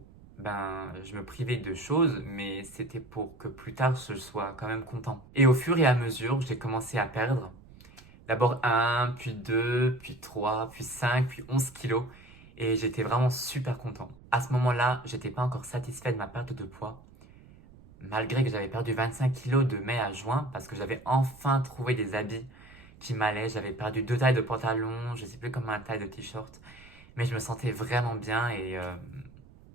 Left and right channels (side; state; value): right; noise; rumble, 22 dB below the sound